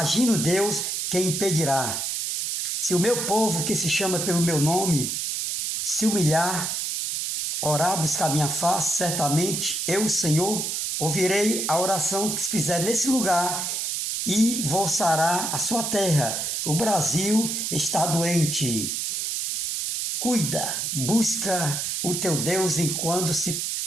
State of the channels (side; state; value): right; noise; hiss, 1 dB below the sound